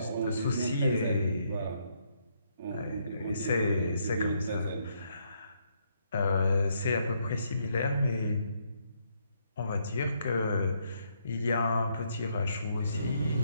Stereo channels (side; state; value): both; inverted; correlation -0.74